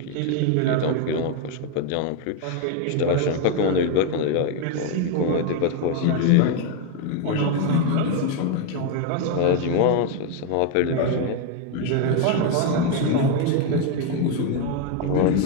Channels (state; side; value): different; both; correlation 0.01